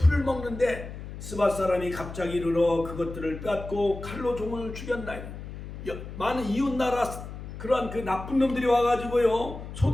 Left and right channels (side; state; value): left; noise; hum, 11 dB below the sound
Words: 먹는데 스밧 사람이 갑자기 이르러 그것들을 빼앗고 칼로 종을 죽였나이다. 많은 이웃 나라 그러한 그 나쁜 놈들이 와가지고요,